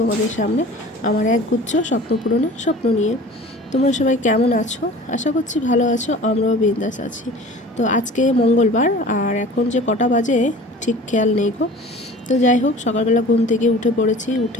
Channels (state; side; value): normal; both; correlation 0.43